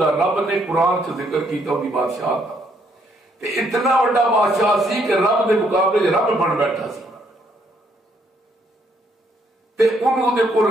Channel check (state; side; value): normal; both; correlation 0.70